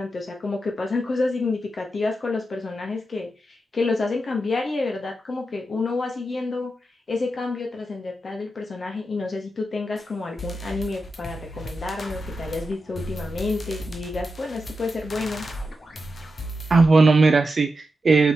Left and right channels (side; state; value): both; normal; correlation 0.88